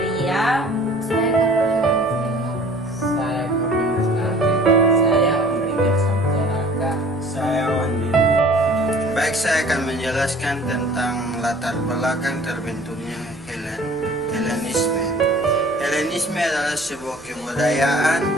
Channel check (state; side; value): noise; left; rumble, 25 dB below the sound